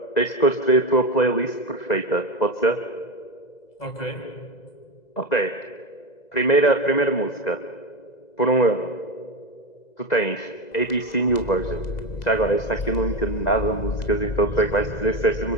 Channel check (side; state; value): right; late; 2.0 ms